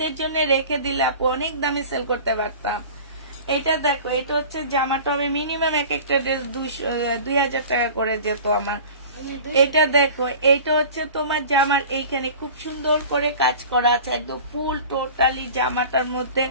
জন্য রেখে দিলে আপু অনেক দামে সেল করতে পারতাম। এটা দেখো, এটা হচ্ছে জামাটা হবে মিনিমাম এক একটা ড্রেস 2000 টাকা করে যেত আমার। এটা দেখো, এইটা হচ্ছে তোমার জামার এইখানে খুব সুন্দর করে কাজ করা আছে, একদম ফুল টোটালি জামাটার মধ্যে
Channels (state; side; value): inverted; both; correlation -0.40